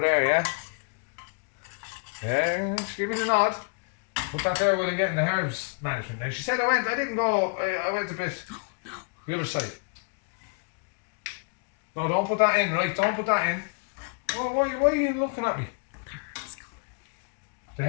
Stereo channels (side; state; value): right; quieter; 39.0 dB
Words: there, yeah? Yeah, just give me the nod. Put that there while I'm getting the herbs management. Now she said I didn't go, I went a bit the other side. No, don't put that in, right? Don't put that in. Why are you looking at me? The